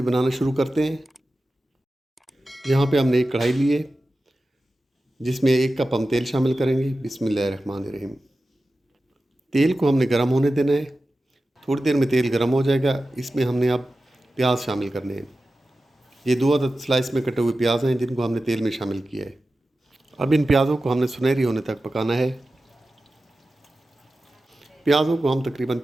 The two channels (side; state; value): both; normal; correlation 0.94